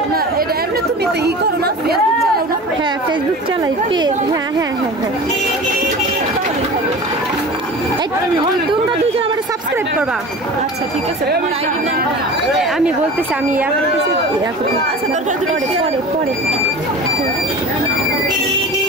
না এটা এমনি তুমি তো ই করো না ফেসবুক চালাও না হ্যাঁ ফেসবুক চালাই পেজ হ্যাঁ তোমরা দুজন আমার সাবস্ক্রাইব করবা আচ্ছা ঠিক আছে তোমার আইডি নাম আমি বলতেছি আমি আচ্ছা দরকার পরে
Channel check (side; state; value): both; normal; correlation 0.36